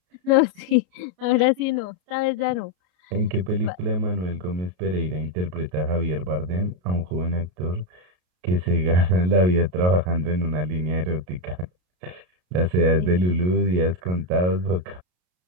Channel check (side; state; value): left; late; 33 ms